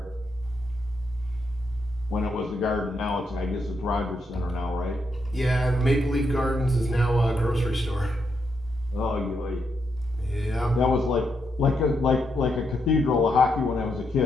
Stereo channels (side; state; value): both; normal; correlation 0.80